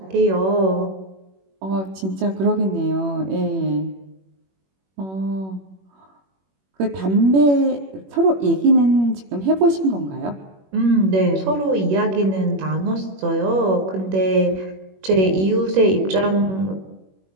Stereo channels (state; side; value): late; left; 21 ms